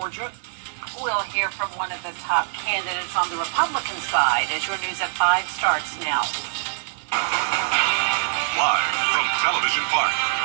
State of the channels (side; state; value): left; silent; 56 dB below the other